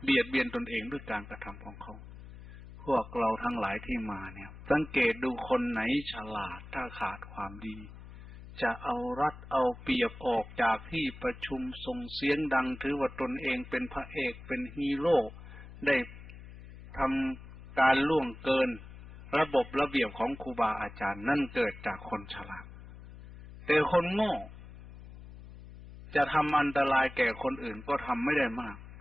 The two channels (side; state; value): left; noise; hum, 16 dB below the sound